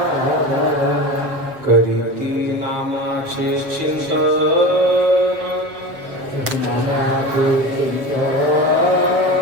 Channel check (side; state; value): left; late; 7.7 ms